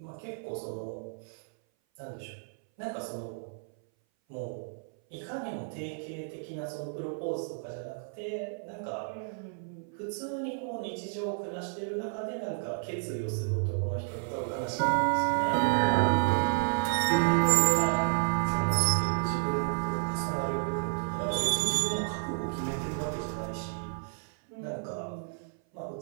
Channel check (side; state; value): left; silent; 57 dB below the other